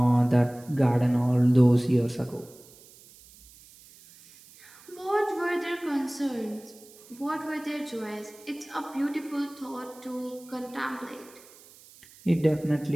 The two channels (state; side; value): noise; right; hiss, 23 dB below the sound